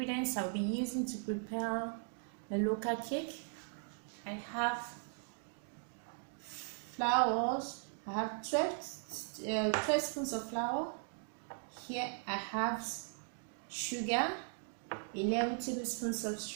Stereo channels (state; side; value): silent; left; 52 dB below the other